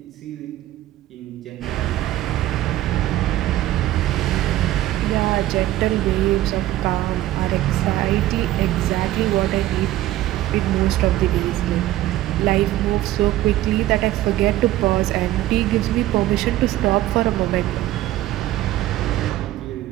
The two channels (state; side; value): quieter; left; 14.9 dB